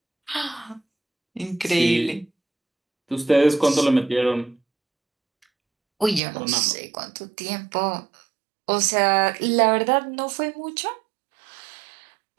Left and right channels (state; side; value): drops out; left; at 6.2 s